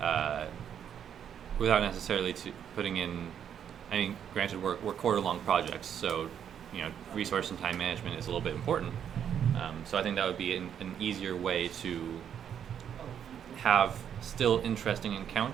necessarily putting in. I mean, granted, we're quarter-long projects, so resource and time management is a little bit important. So I think that would be an easier way to have still interesting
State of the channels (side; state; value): left; quieter; 8.8 dB